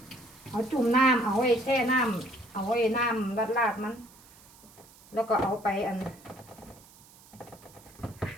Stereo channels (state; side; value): noise; right; hiss, 24 dB below the sound